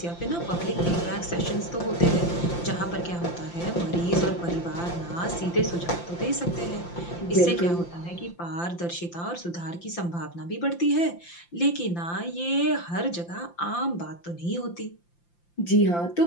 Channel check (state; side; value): late; right; 5.8 ms